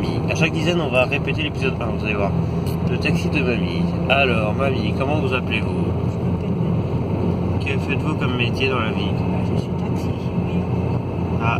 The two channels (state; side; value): identical; both; correlation 1.00